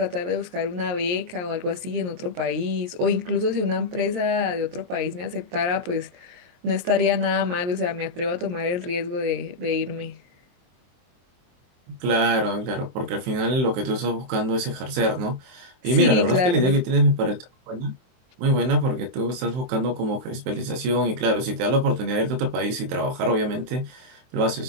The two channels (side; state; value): left; late; 23 ms